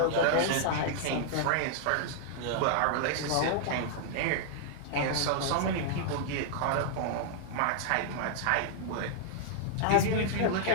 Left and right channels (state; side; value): different; both; correlation -0.01